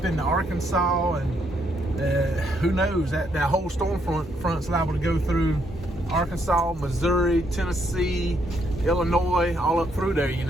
into Arkansas, and who knows, that whole storm front's liable to go through Arkansas, Missouri, Tennessee, Illinois, all up through there, you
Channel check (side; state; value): both; normal; correlation 0.73